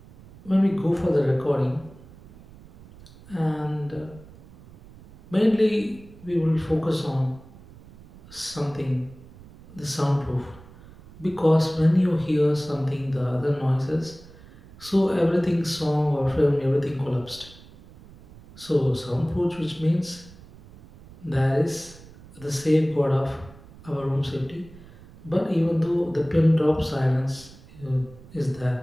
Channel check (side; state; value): right; noise; rumble, 21 dB below the sound